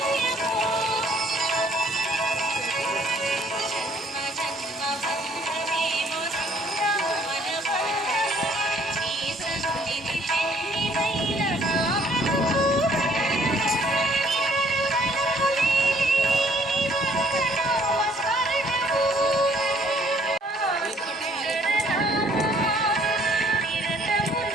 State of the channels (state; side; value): normal; both; correlation 0.61